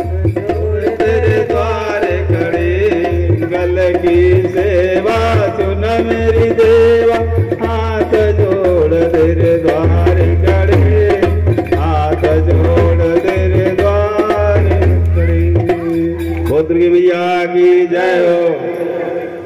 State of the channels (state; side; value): identical; both; correlation 1.00